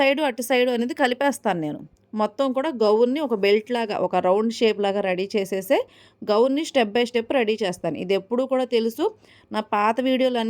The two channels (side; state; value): both; identical; correlation 1.00